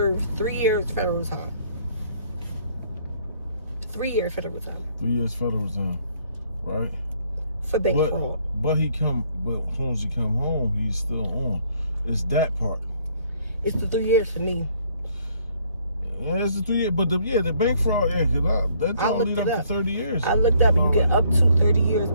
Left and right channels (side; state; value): both; inverted; correlation -0.64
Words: 3 years federal time. 3 years federal time. 3 years federal time, right? For bank fraud. But as soon as he come home, he's still on. It's that part. It's the 3 years for me. Yeah, it's the 3 years. But the bank fraud, that's gonna lead up to 30 years. I looked up and you get up to 30 years.